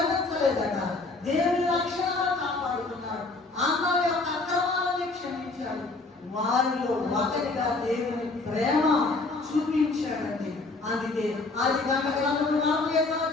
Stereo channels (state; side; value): quieter; right; 3.4 dB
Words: దేవుని లక్షణాలు కాపాడుతున్నాడు, అందరి యొక్క అక్రమాలని క్షమించాడు, వారిలో ఒకరిగా దేవుని ప్రేమ చూపించాడండి. అందుకే అది గంటలు